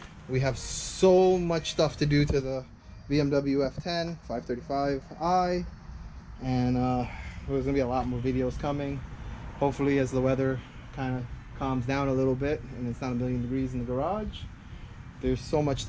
We have so much stuff to do to the BMW F10 535i, and there's gonna be a lot more videos coming. Hopefully, as the weather kind of calms down a little bit and it's not a million degrees in the garage. There's so much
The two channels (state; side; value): identical; both; correlation 1.00